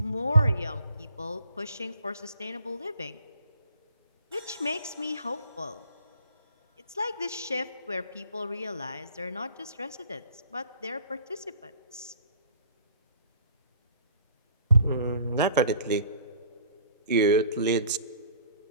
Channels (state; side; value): inverted; both; correlation -0.51